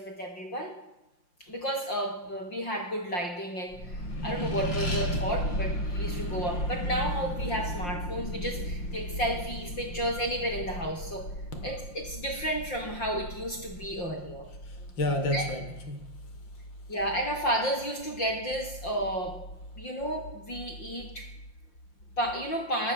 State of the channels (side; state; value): right; late; 5.7 ms